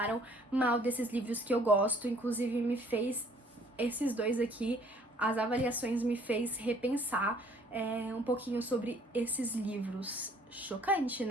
mal desses livros que eu gosto, inclusive me fez, esses dois aqui, as avaliações me fez repensar um pouquinho sobre esses livros. Chocante,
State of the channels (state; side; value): normal; both; correlation 0.59